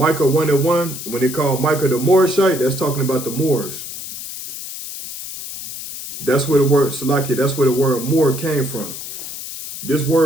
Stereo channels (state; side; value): noise; left; hiss, 9 dB below the sound